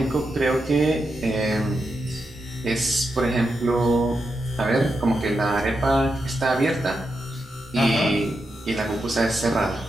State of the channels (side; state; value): both; normal; correlation 0.86